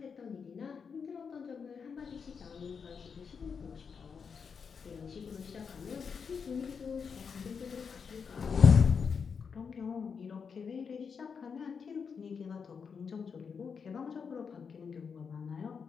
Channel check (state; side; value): quieter; right; 6.0 dB